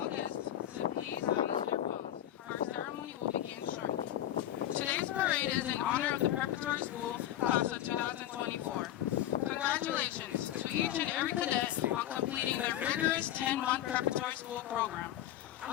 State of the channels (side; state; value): right; quieter; 12.5 dB